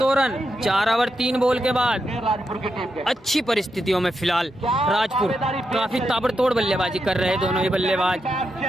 रन 4 ओवर 3 बॉल के बाद। अच्छी परिस्थितियों में फिलहाल राजपुर काफी ताबड़तोड़ बल्लेबाजी कर रहे हैं दोनों ही बल्लेबाज,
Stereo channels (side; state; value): both; normal; correlation 0.85